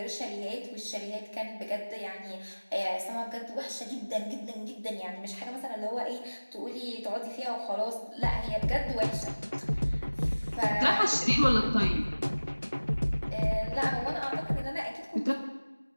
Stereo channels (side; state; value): both; inverted; correlation -1.00